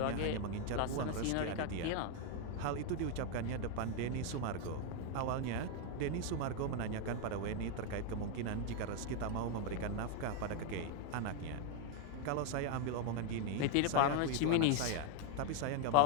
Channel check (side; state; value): both; different; correlation 0.00